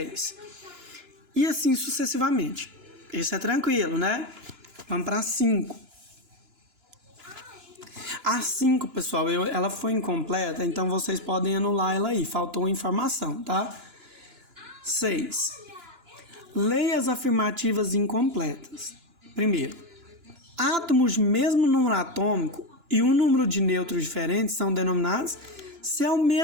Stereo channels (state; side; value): late; left; 2.9 ms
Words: E assim sucessivamente. Esse é tranquilo, né? Vamos para 5. A 5, pessoal, ela foi incompleta, então vocês podem anular ela aí. Faltou informação, tá? 6. Leia as afirmativas incompletas. Primeiro, átomos de mesmo número atômico e um número de nêutrons diferentes são denominados. Se é o